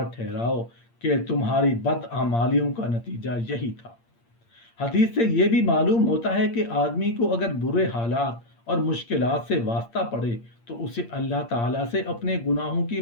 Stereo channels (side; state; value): right; late; 8.6 ms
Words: ٹھہراؤ کہ تمہاری بدعمالیوں کا نتیجہ یہی تھا۔ حدیث سے یہ بھی معلوم ہوتا ہے کہ آدمی کو اگر برے حالات اور مشکلات سے واسطہ پڑے تو اسے اللہ تعالیٰ سے اپنے گناہوں کی